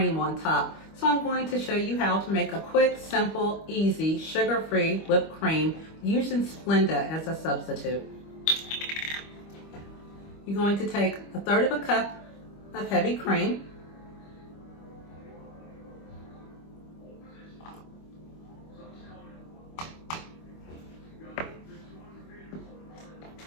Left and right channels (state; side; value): late; right; 25 ms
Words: on top. So I'm going to show you how to make a quick, simple, easy, sugar-free whipped cream using Splenda as a substitute. You're going to take 1/3 of a cup of heavy cream,